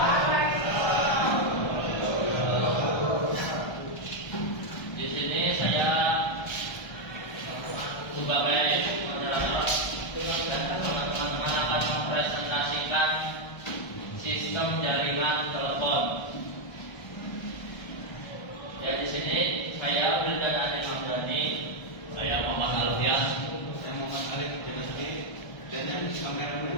Di sini saya sebagai moderator dan teman-teman akan mempresentasikan sistem jaringan telepon. Ya, di sini saya Wildan Adil Hamdani, saya Muhammad Alfian, saya Muhammad Alif Jenazli, dan yang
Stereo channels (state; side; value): late; right; 1.3 ms